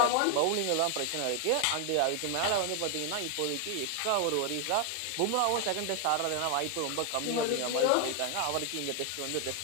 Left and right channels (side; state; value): both; different; correlation 0.00